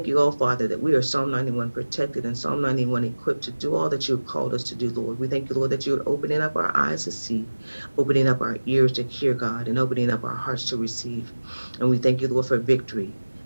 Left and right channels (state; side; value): inverted; both; correlation -1.00